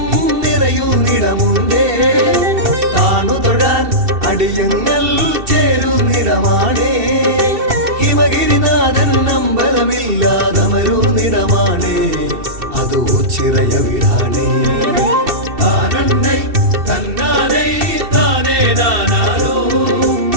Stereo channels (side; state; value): left; late; 2.7 ms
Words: നിറയുന്നിടമുണ്ടേ. താണു തൊഴാൻ അടിയങ്ങൾ ചേരുന്നിടമാണേ. ഹിമഗിരിനാഥൻ അമ്പലമില്ലാതമരുന്നിടമാണേ. അത് ഓച്ചിറയ വീടാണേ. താനന്നൈ തന്നാനൈ താനേ നാനാരോ